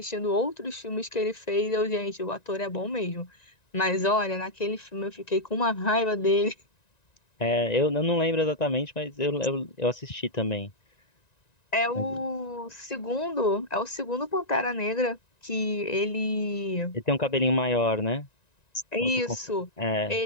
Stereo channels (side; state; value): right; late; 1.9 ms